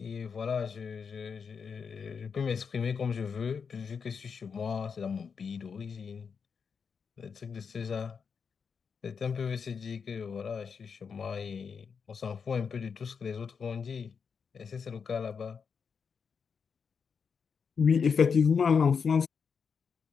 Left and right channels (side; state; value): right; quieter; 6.0 dB